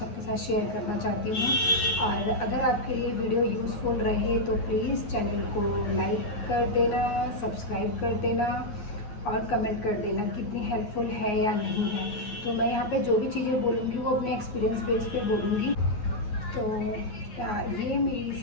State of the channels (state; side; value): late; right; 9.6 ms